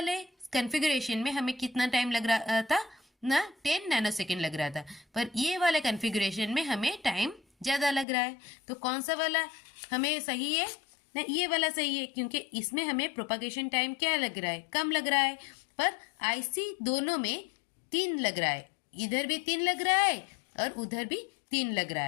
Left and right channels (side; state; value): right; drops out; at 8.1 s